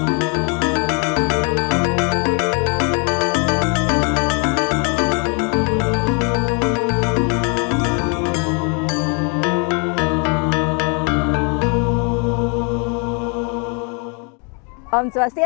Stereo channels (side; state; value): right; quieter; 36.0 dB